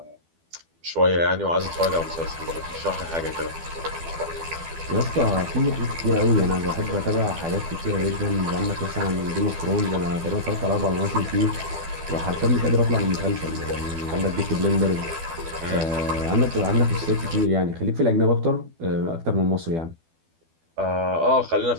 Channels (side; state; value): left; late; 12 ms